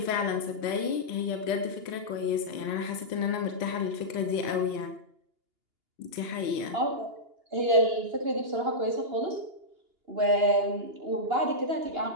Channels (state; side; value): late; left; 2.8 ms